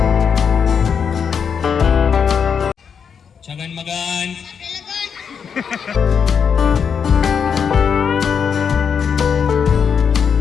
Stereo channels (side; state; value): right; quieter; 6.9 dB